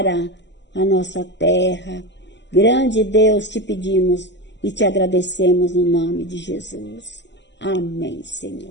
a nossa terra, grande Deus, te pedimos e te agradecemos no nome de Jesus. Amém,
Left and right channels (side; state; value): right; late; 0.51 ms